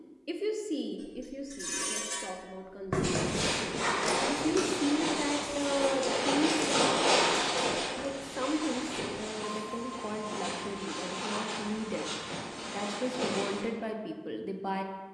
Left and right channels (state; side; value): identical; both; correlation 1.00